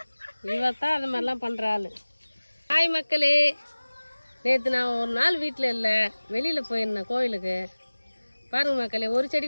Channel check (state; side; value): inverted; both; correlation -1.00